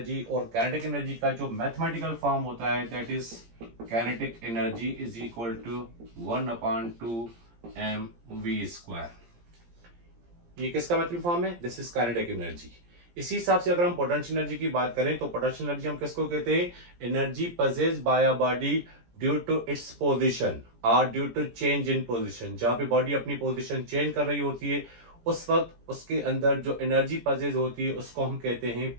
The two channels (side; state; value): left; late; 17 ms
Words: और काइनेटिक एनर्जी का जो मैथमेटिकल फॉर्म होता है that is kinetic energy is equal to 1/2 mv²। ये किसका मैथमेटिकल फॉर्म है? This is kinetic energy. इसी हिसाब से अगर हम पोटेंशियल एनर्जी की बात करें तो पोटेंशियल एनर्जी हम किसको कहते हैं? Energy possessed by a body due to its position और due to change in position. जहां पे बॉडी अपनी पोजीशन चेंज कर रही होती है उस वक्त उसके अंदर जो एनर्जी पजेज होती है उसको हम कहते हैं